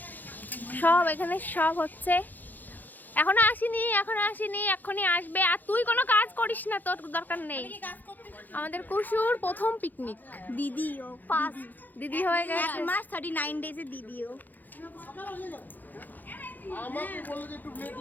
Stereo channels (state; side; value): late; right; 0.085 ms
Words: সব এখানে সব হচ্ছে, এখনো আসেনি, এক্ষুনি আসবে। আর তুই কোনো কাজ করিস না, তোর দরকার নেই। আমাদের কুসুর প্রথম পিকনিক, দিদিও ফার্স্ট দিদি হয়ে এক গেছে। মাস 39 ডেজে দিদিও। আমাকে বললো যে একটু